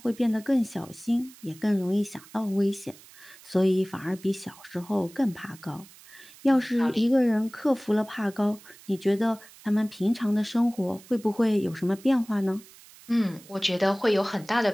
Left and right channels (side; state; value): right; noise; hiss, 22 dB below the sound